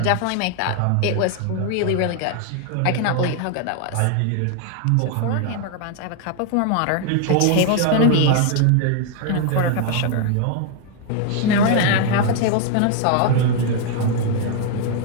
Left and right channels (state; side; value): different; both; correlation 0.00